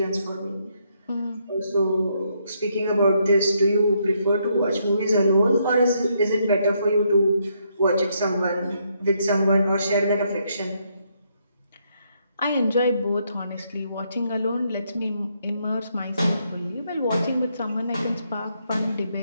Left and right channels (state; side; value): inverted; both; correlation -0.75